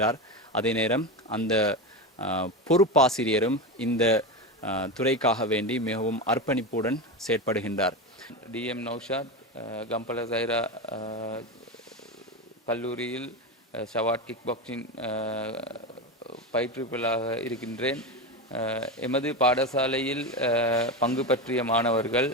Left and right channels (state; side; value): normal; both; correlation 0.18